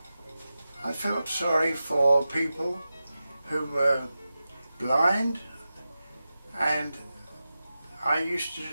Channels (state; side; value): inverted; both; correlation -0.93